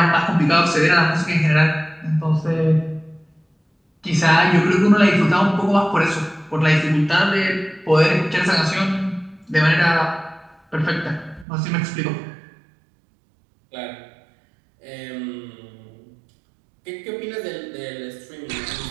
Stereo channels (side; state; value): left; drops out; at 11.5 s